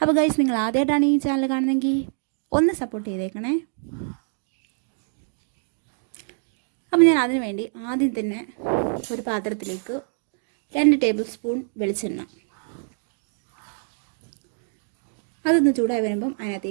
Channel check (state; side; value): silent; left; digital silence